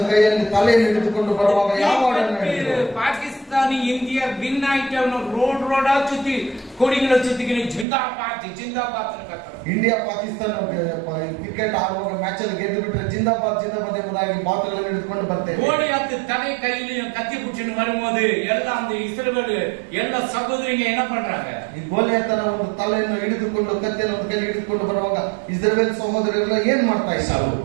ಕೈಯಲ್ಲಿ ತಲೆಯನ್ನು ಹಿಡಿದುಕೊಂಡು ಬರುವಾಗ ಯಾವ ಹಾಡನ್ನು ಹೇಳಿದ್ರು? பாகிஸ்தானி இந்தியா வின் ஆயிட்டு ரோடா சுத்தி கொடிகளை சுத்திக்கிட்டு ஜிந்தாபாத் ஜிந்தாபாத் கத்துறாங்க. ಇಂಡಿಯಾ ಪಾಕಿಸ್ತಾನ ಕ್ರಿಕೆಟ್ ಆಡುವಾಗ ಮ್ಯಾಚ್ ಅಲ್ಲಿ ಗೆದ್ದು ಬಿಟ್ರೆ ಜಿಂದಾಬಾದ್ ಜಿಂದಾಬಾದ್ ಎಂಬುದಾಗಿ ಬಾತುಗಳನ್ನು ಹಿಡಿದುಕೊಂಡು ಬರ್ತೇವೆ. கோலியாத்து தலை கையிலையும் கத்தி பிடிச்சுன்னு வரும்போது எல்லாம் அந்த இஸ்ரவேல் எல்லா சகோதரிங்க என்ன பண்றாங்க? ಈ ಗೋಲಿಯಾತನ ಒಂದು ತಲೆಯನ್ನು ಹಿಡಿದುಕೊಂಡು ಕತ್ತಿಯನ್ನು ಒಂದು ಕೈಯಲ್ಲಿ ಹಿಡಿದುಕೊಂಡು ಬರುವಾಗ ಇಸ್ರೇಲ್ ಸಹೋದರರೆಲ್ಲ ಏನ್ ಮಾಡ್ತಾ ಇದ್ದಾರೆ?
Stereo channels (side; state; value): left; drops out; at 7.9 s